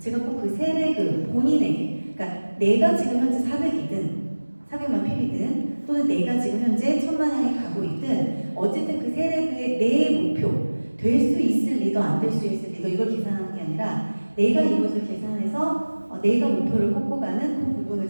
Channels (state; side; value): inverted; both; correlation -1.00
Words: 꼭 그 세레그 본인에게 그러니까 내가 지금 현재 400이든 400만 PB든 또는 내가 지금 현재 1000만 향에 가고 있든 어쨌든 그 세레그의 내 목표 될 수 있을 리더 안 될 수 있을 리더 이걸 계산하는 게 아니라 내가 이것을 계산해서 내가 목표를 꽂고 가는 그 부분을